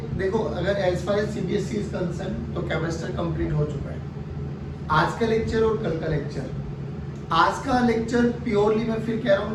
देखो अगर as far as CBSE is concern तो कैपेसिटर कंप्लीट हो चुका है। आज का लेक्चर और कल का लेक्चर, आज का लेक्चर प्योरली मैं फिर कह रहा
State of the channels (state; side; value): identical; both; correlation 1.00